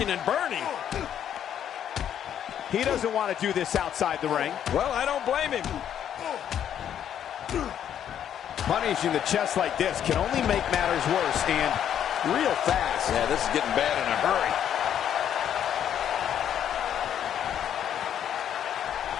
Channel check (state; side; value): quieter; right; 9.7 dB